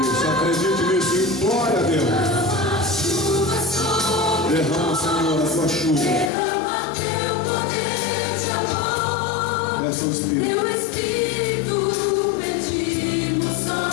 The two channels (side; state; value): right; drops out; at 6.3 s